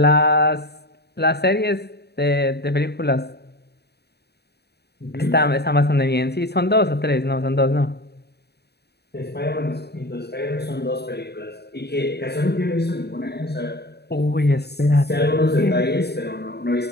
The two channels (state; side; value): late; right; 0.48 ms